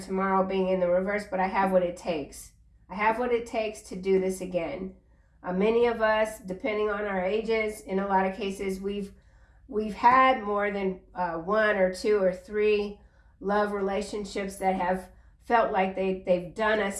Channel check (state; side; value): identical; both; correlation 1.00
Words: being in the reverse, but I have what it takes. I have what it takes to do this again. Many of us, depending on our ages, in a lot of cases, we've had more than 1 or 2 or 3 love relationships that have felt like they've done us